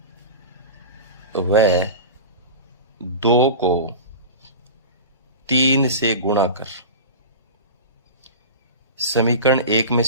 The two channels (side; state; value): both; inverted; correlation -0.30